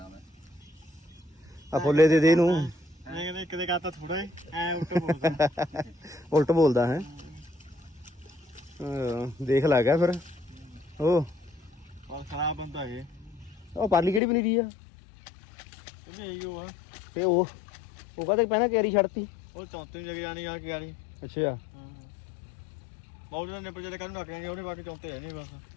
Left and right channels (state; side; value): drops out; right; at 14.2 s